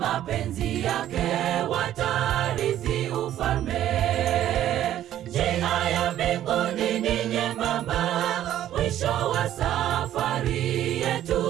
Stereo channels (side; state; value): left; quieter; 12.1 dB